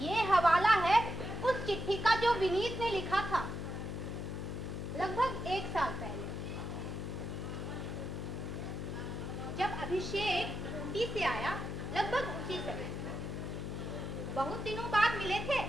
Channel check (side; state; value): left; noise; hum, 4 dB below the sound